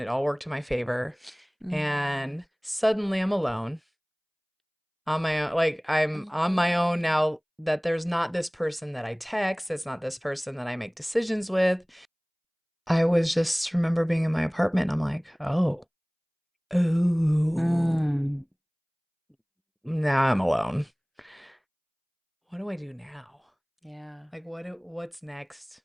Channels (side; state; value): both; identical; correlation 1.00